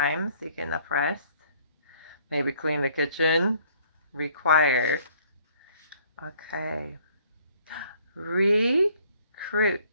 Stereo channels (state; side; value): inverted; both; correlation -0.60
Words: so you get enough rest. Maybe clean the kitchen. Require. Okay. Recruit.